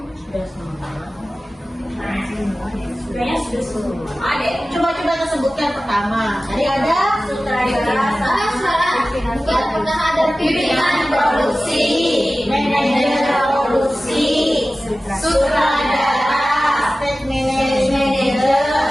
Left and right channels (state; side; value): normal; both; correlation 0.96